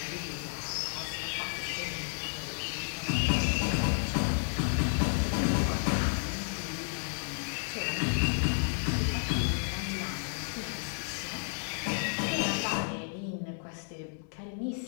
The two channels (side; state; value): right; silent; 56 dB below the other